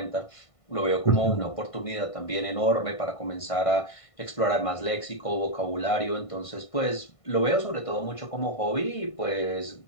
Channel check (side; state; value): right; late; 1.5 ms